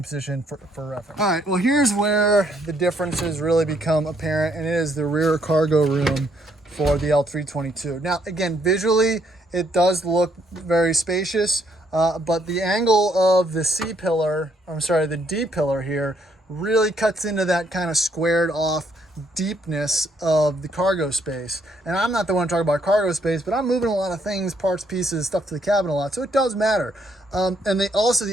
position for reference. All right, well, here's where the differences really become apparent, and it is the rear cargo room for the L322. Now, again, visually, it does look very spacious, but the angle of the the D pillar here really cuts into that kind of squared off deepness of the cargo space. And I'm not the one talking about cargo space, but I'm moving a lot of things, parts, pieces, stuff to the cabin a lot, so it does matter. And they also,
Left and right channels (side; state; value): both; normal; correlation 0.71